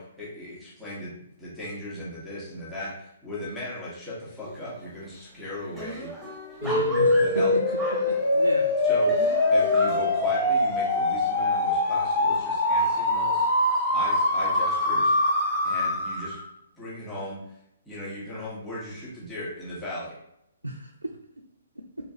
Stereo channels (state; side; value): inverted; both; correlation -0.46